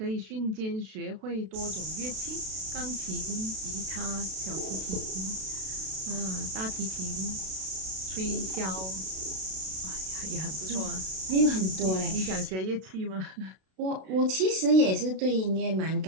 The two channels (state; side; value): late; left; 32 ms